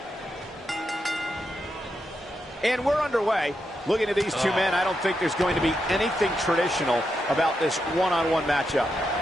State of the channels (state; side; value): normal; both; correlation 0.85